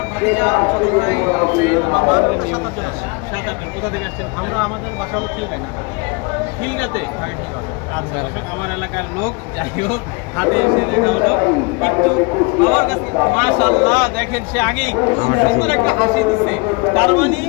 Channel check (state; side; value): quieter; right; 29.0 dB